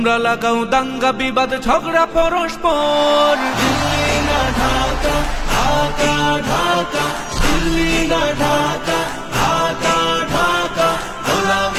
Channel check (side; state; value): both; identical; correlation 1.00